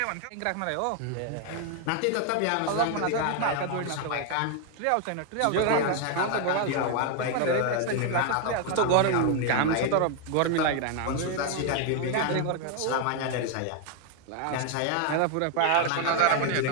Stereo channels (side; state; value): both; different; correlation 0.00